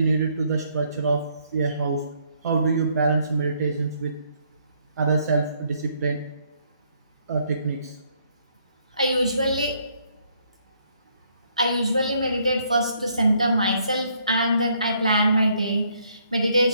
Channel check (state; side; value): inverted; both; correlation -0.69